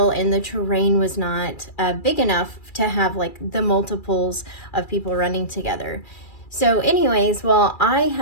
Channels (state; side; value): late; right; 2.3 ms